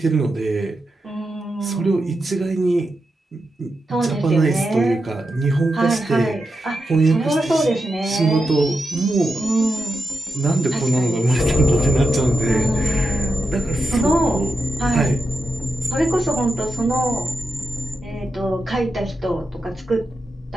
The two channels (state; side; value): normal; both; correlation 0.88